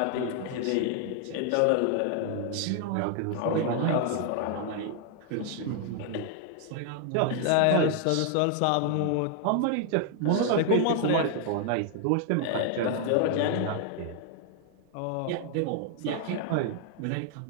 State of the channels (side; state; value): both; different; correlation 0.00